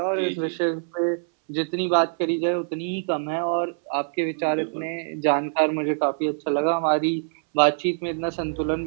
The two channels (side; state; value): left; silent; 62 dB below the other